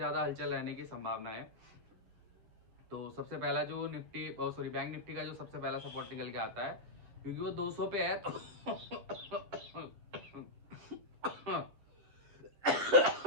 हलचल रहने की संभावना है। तो सबसे पहला जो निफ्टी सॉरी बैंक निफ्टी का जो सबसे पहला सपोर्ट निकल के आता है, क्योंकि वो 200 पे है तो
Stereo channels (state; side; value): late; left; 9.8 ms